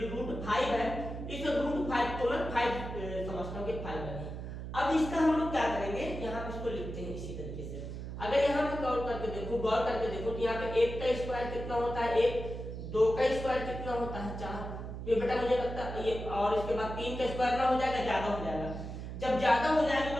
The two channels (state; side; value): noise; right; hum, 7 dB below the sound